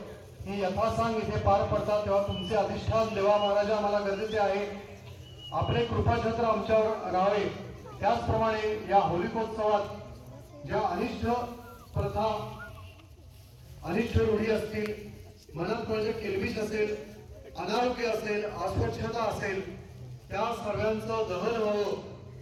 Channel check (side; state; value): both; identical; correlation 1.00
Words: ही यथासांग इथे पार पडतात. तेव्हा तुमचे अधिष्ठान देवा महाराजा आम्हाला गरजेचे आहे. आपले कृपाछत्र आमच्यावर राहावे. त्याचप्रमाणे या होलिकोत्सवात ज्या अनिष्ट प्रथा, अनिष्ट रूढी असतील, मनात म्हणजे केलबिश असेल, अनारोग्य असेल, अस्वच्छता असेल, त्या सर्वांचं दहन व्हावं